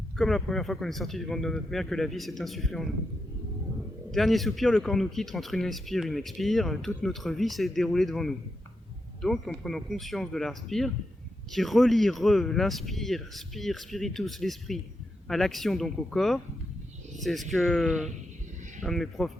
Comme la première fois qu'on est sorti du ventre de notre mère, que la vie s'est insufflée en nous. Dernier soupir, le corps nous quitte entre une inspire et une expire, toute notre vie s'est déroulée devant nous. Donc, en prenant conscience de l'inspire, qui relie l'inspire, spire, spiritus, l'esprit, à l'action, donc au corps, c'est ce que un de mes profs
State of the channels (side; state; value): both; normal; correlation 0.85